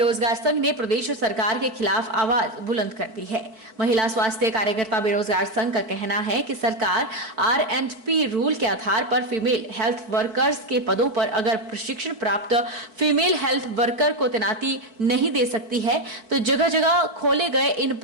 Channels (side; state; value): left; late; 4.5 ms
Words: संघ ने प्रदेश सरकार के खिलाफ आवाज बुलंद कर दी है। महिला स्वास्थ्य कार्यकर्ता बेरोजगार संघ का कहना है कि सरकार R&P रूल के आधार पर फीमेल हेल्थ वर्कर्स के पदों पर अगर प्रशिक्षण प्राप्त फीमेल हेल्थ वर्कर को तैनाती नहीं दे सकती है तो जगह जगह खोले गए इन